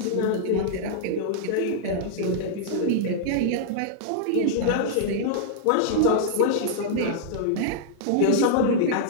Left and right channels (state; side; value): different; both; correlation -0.01